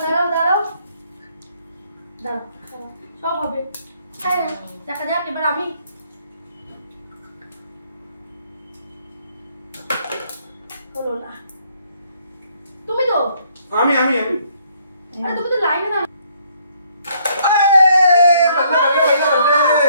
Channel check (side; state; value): both; inverted; correlation -0.67